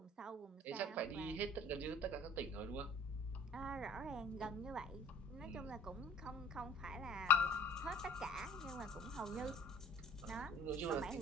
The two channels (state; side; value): normal; both; correlation 0.51